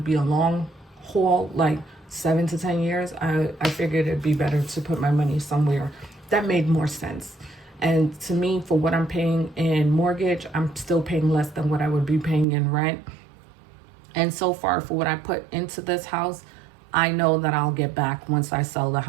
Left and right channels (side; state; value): left; drops out; at 12.5 s